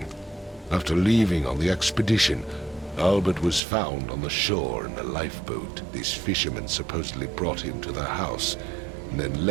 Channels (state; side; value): drops out; left; at 3.6 s